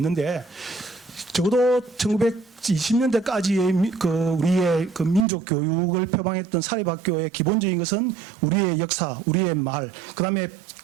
적어도 1920년대까지의 우리의 민족 교육을 표방했던 사립학교의 기본적인 것은 우리의 역사, 우리의 말, 그다음에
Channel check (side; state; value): left; drops out; at 5.2 s